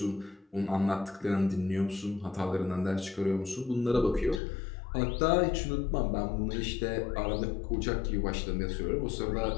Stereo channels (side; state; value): right; drops out; at 4.4 s